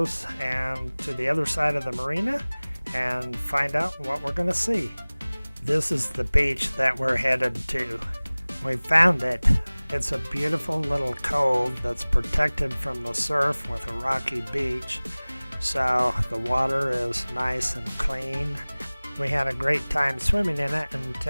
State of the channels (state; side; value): inverted; both; correlation -1.00